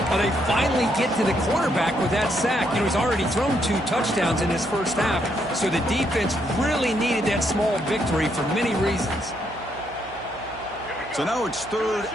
Well, they finally get to the quarterback with that sack. You know, he's already thrown 2 touchdowns in his first half, so the defense really needed that small victory for many reasons. So now it's third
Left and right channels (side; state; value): right; noise; hum, 20 dB below the sound